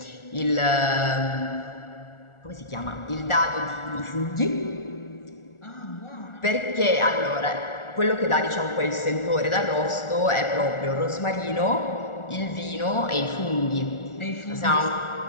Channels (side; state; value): right; late; 1.4 ms